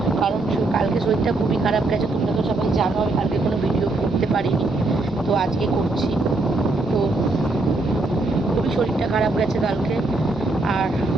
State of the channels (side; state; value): left; quieter; 3.1 dB